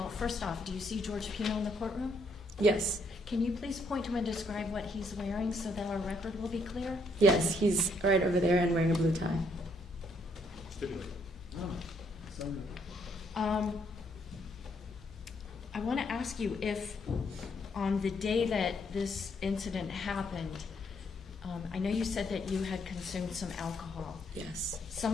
first off, do you see George Pino in the courtroom? Yes. Can you please point to him and describe what he's wearing so that our record will be clear? Yes, he's right over there and wearing a blue tie. I want to ask you if on the day that this incident happened, I know you said that you had consumed some alcohol. Yes.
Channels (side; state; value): both; normal; correlation 0.71